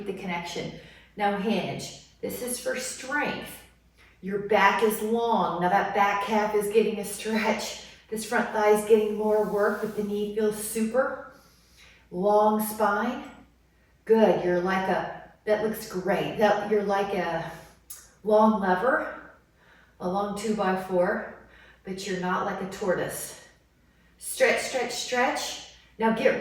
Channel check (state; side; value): identical; both; correlation 1.00